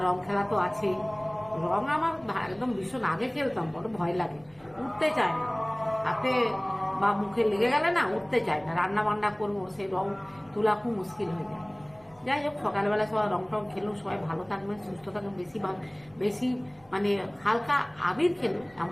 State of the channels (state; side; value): noise; right; hum, 30 dB below the sound